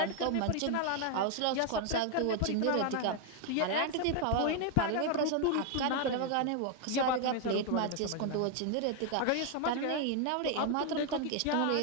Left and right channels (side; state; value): both; different; correlation 0.00